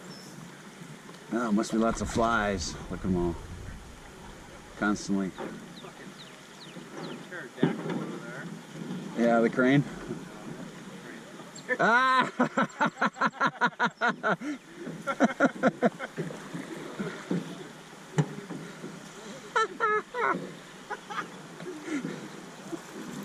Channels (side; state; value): both; identical; correlation 1.00